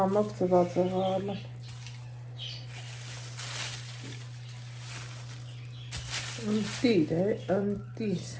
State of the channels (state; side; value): identical; both; correlation 1.00